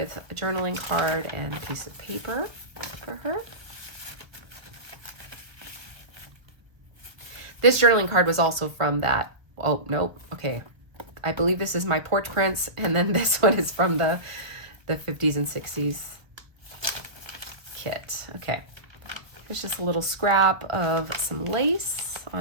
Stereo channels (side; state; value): left; late; 1.1 ms